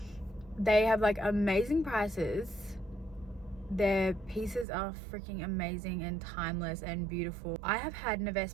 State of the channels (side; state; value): left; drops out; at 4.7 s